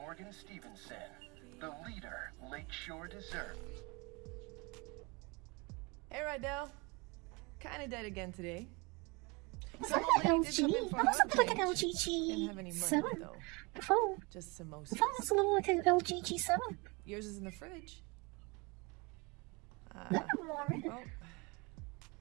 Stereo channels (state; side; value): quieter; left; 28.0 dB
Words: Stevenson, the leader Lakeshore deserves. Hey, Rydell. Kinda dead again today. It's like an LG. That was something like an LG G7 before. Just samosas. The phone was a little like an LG G7. Yours is in the fridge. Well,